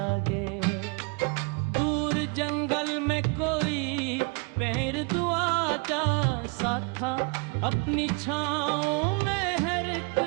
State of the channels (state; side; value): quieter; left; 33.2 dB